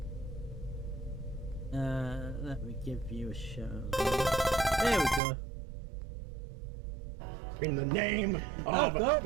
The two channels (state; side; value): drops out; left; at 5.2 s